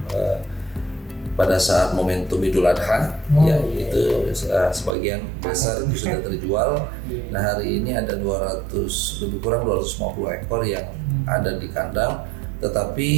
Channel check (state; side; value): drops out; left; at 5.0 s